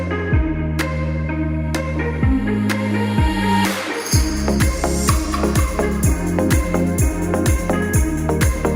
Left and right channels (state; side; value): identical; both; correlation 1.00